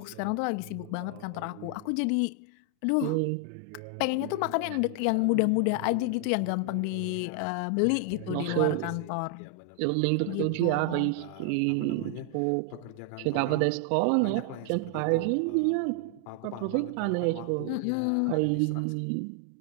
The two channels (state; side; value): different; both; correlation 0.00